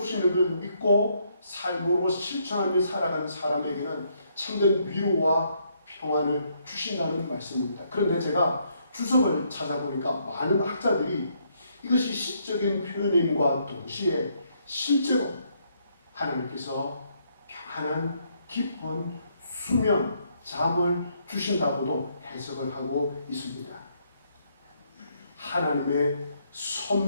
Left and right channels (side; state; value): both; inverted; correlation -0.72